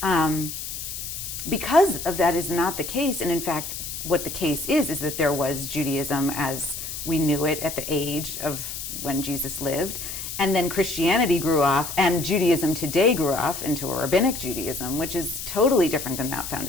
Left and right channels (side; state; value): left; noise; hiss, 7 dB below the sound